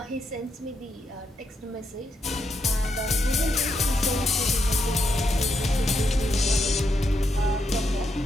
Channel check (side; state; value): both; normal; correlation 0.80